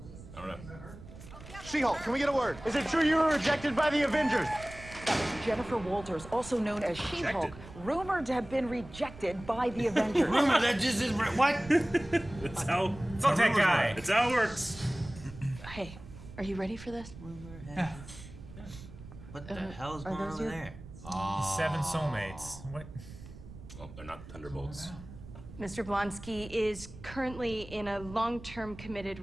I don't know. She-Hulk, can we get a word? Is it true you were rejected by the Avengers? That was Jennifer Walters, also known as She-Hulk, rumored to have been rejected by the Avengers. Rumor, that just is what? That's how. Fuck that guy. It's how it works. Hey, are you ready for this? What the hell is going on over there? Seven soulmates. What? Well, they're not Thunderbolts. Mr. Blonsky is currently in a long-term committed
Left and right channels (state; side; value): noise; right; rumble, 15 dB below the sound